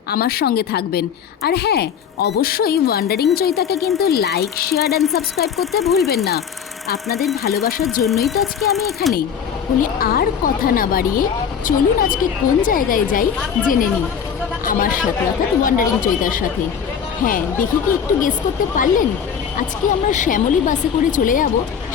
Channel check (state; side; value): quieter; right; 7.6 dB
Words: আমার সঙ্গে থাকবেন। আর হ্যাঁ, অবশ্যই ওয়ান্ডারিং চৈতাকে কিন্তু লাইক, শেয়ার অ্যান্ড সাবস্ক্রাইব করতে ভুলবেন না। আপনাদের ভালোবাসার জন্যই তো আজকে আমি এখানে। বলে আর কথা না বাড়িয়ে চলুন আজকে কোন জায়গায় যাই জেনে নিই আমার সাথে, অর্থাৎ ওয়ান্ডারিং চৈতার সাথে। হ্যাঁ, দেখি কি একটু গেস করতে পারলেন? আজকে আমরা শ্যামলী বাসে করে চলে যাব